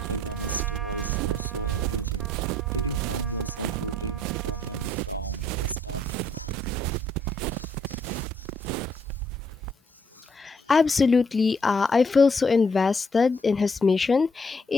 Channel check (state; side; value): normal; both; correlation 0.67